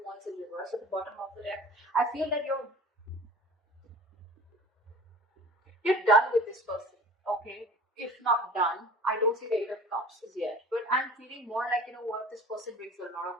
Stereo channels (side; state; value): both; normal; correlation 0.42